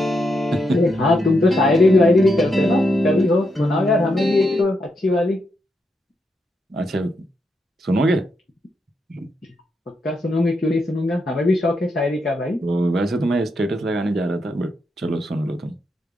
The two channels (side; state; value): both; normal; correlation 0.82